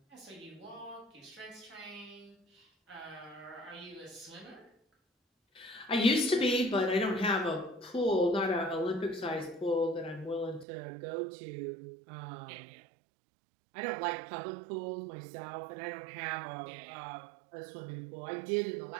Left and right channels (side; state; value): left; drops out; at 10.7 s